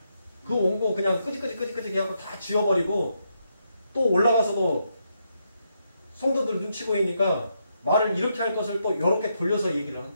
그 원고 그냥 끄직끄직 하고 다 지워버리고 또 올라가서도 성도들 눈치 보이니까 말을 이렇게 할 것을 또 이렇게 돌려서 얘기를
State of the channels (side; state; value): both; inverted; correlation -0.80